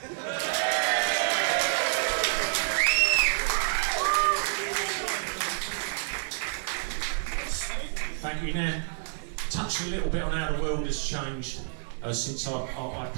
Thank you. Now, touch a little bit on how the world has changed since I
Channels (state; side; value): silent; left; digital silence